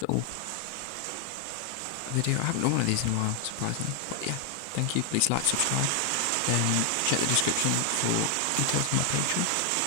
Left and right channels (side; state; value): both; different; correlation 0.00